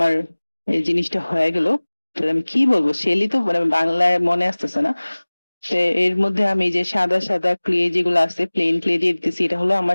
এই জিনিসটা হয়ে গেল। আমি কি বলবো, শেলই তো মানে বাংলায় মনে আসতেছে না। তো এর মধ্যে আমি যে সাদা সাদা ক্লে যেগুলো আছে প্লেন ক্লে দিয়ে দিতেছি। এটা হলো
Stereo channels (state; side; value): inverted; both; correlation -1.00